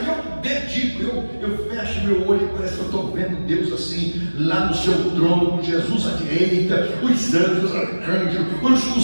E eu dedico, eu fecho meu olho e parece que eu estou vendo Deus assim, lá no seu trono, com Jesus à direita, os anjos, os arcanjos,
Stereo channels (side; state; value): both; inverted; correlation -1.00